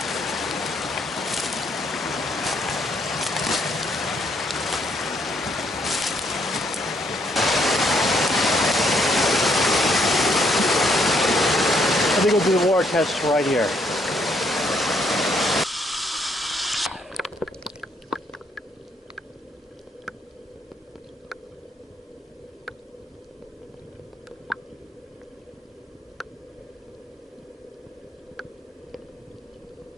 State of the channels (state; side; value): normal; both; correlation 0.71